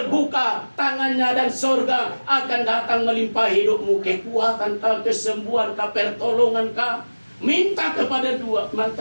tangannya, dan surga akan datang melimpahi hidupmu. Kekuatan kah, kesembuhan kah, pertolongan kah. Minta kepada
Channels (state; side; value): inverted; both; correlation -1.00